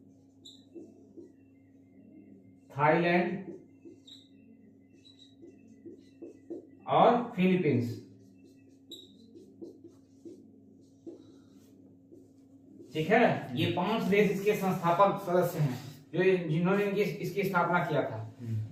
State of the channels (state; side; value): identical; both; correlation 1.00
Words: Thailand और फिलीपींस। ठीक है, ये 5 देश इसके संस्थापक सदस्य हैं जो जिन्होंने इसकी स्थापना किया था।